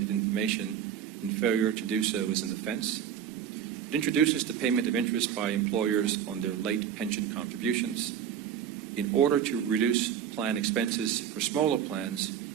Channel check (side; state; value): left; quieter; 8.9 dB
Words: information, and failure to do so is an offense. It introduces the payment of interest by employers on their late pension contributions. In order to reduce plan expenses for smaller plans,